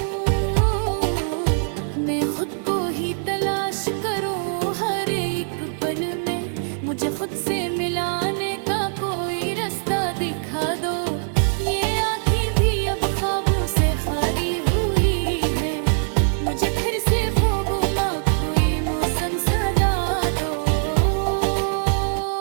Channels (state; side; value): silent; left; 64 dB below the other